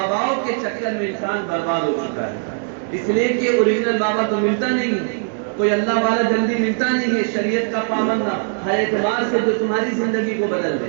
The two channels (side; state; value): left; silent; digital silence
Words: کے چکر میں انسان برباد ہو چکا ہے۔ اس لیے کہ اوریجنل بابا تو ملتا نہیں ہے، کوئی اللہ والا جلدی ملتا نہیں ہے، شریعت کا پابند ہر اعتبار سے جو تمہاری زندگی کو بدل